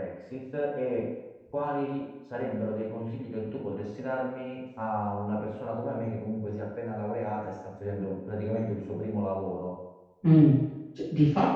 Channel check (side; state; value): both; identical; correlation 1.00